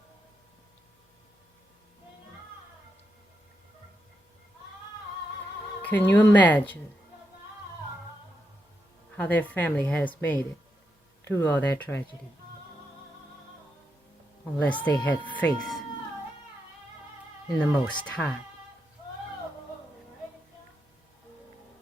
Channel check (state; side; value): normal; both; correlation 0.84